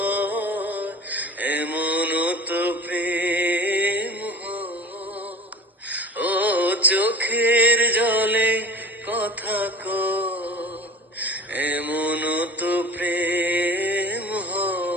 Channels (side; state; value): both; normal; correlation 0.37